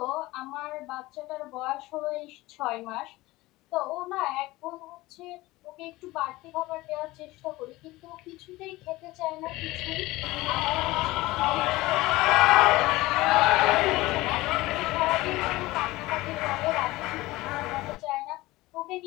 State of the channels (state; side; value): quieter; right; 19.4 dB